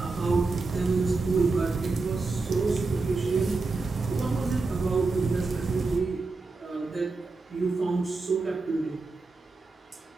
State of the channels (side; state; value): left; quieter; 3.8 dB